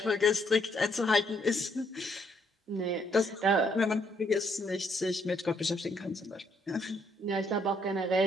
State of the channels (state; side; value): normal; both; correlation 0.71